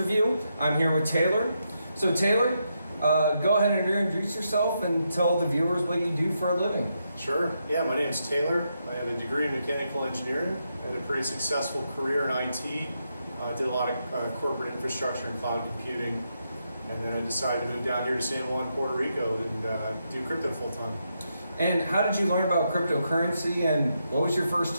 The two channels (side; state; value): both; inverted; correlation -0.82